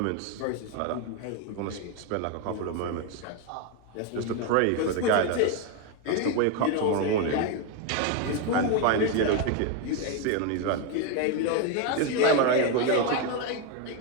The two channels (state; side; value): different; both; correlation 0.02